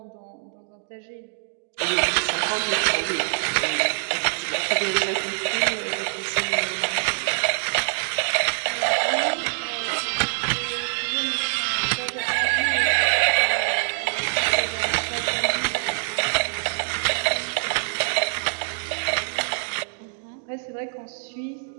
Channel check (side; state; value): left; silent; digital silence